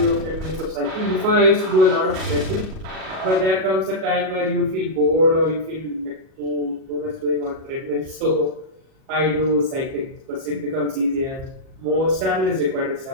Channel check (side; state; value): left; late; 37 ms